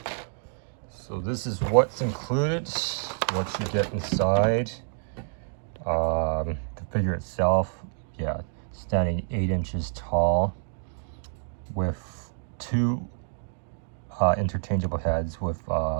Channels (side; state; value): left; silent; digital silence